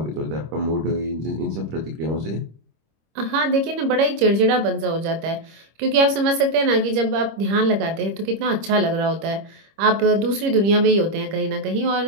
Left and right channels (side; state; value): left; late; 25 ms